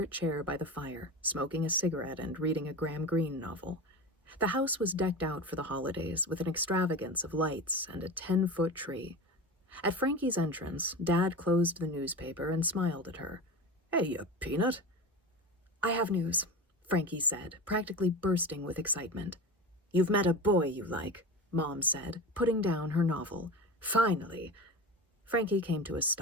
chair by the fire, smoking a cigarette and reading a Graham Greene novel. The house was decked out for the holidays with an extravagance of lights and a 10-foot tree. At Frankie's entrance, Dad closed the newspaper and smiled at her. "Hey, you peanut." "I have news," Frankie said, practically bursting with excitement. "You've met a boy you like," Mom said, putting down her novel. "Finally." Frankie came to a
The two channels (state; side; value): normal; both; correlation 0.28